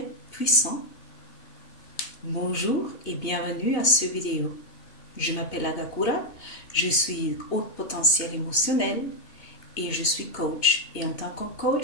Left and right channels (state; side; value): late; right; 2.8 ms